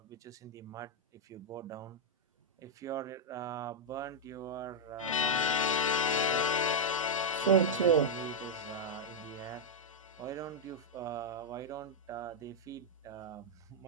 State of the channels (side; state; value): both; normal; correlation -0.04